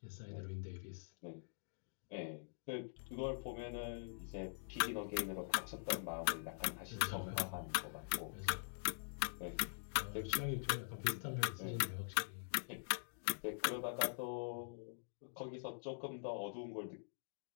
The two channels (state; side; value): silent; right; digital silence